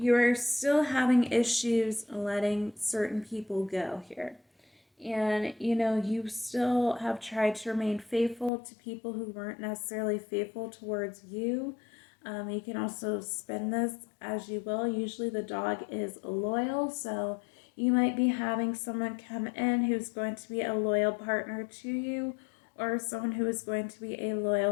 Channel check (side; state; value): right; drops out; at 8.5 s